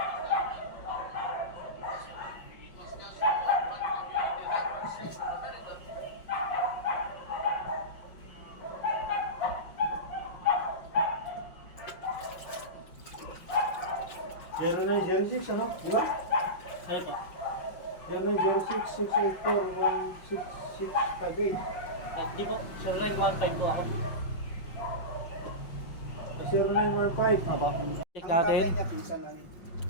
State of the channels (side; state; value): right; late; 5.5 ms